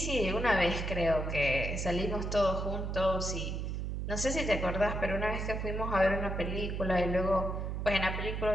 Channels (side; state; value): right; noise; hum, 3 dB below the sound